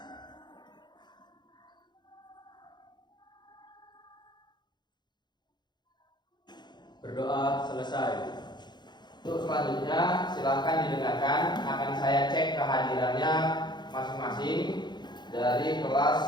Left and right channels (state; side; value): late; right; 0.21 ms